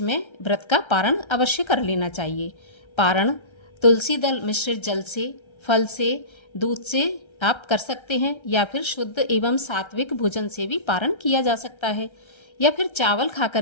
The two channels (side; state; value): right; late; 1.3 ms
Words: में व्रत का पारण अवश्य कर लेना चाहिए। पारण तुलसी दल मिश्रित जल से, फल से, दूध से आप कर सकते हैं या फिर शुद्ध एवं सात्विक भोजन से भी पारण किया जा सकता है या फिर चावल